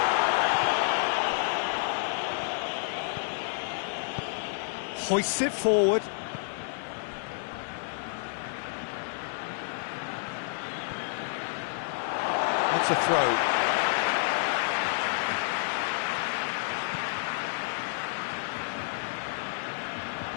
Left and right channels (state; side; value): silent; right; digital silence